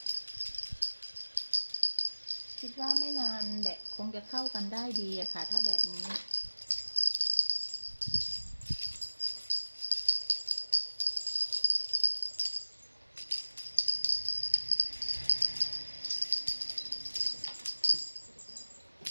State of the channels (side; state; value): both; inverted; correlation -1.00